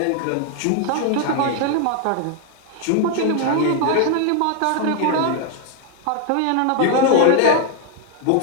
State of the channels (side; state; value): both; different; correlation 0.00